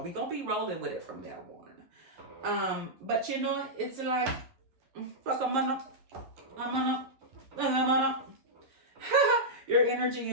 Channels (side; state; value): left; late; 11 ms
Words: We gonna be rolling with it from now on. But you know, it's like, fuck I'm gonna. Your energy